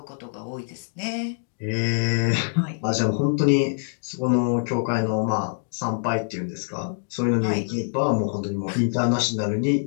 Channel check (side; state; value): right; silent; digital silence